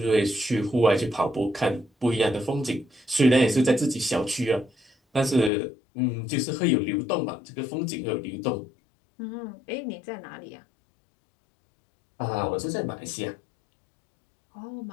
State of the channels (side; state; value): right; drops out; at 5.5 s